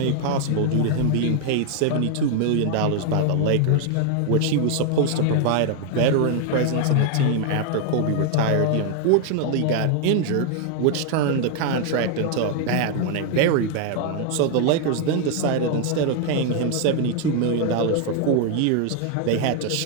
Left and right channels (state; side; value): different; both; correlation 0.00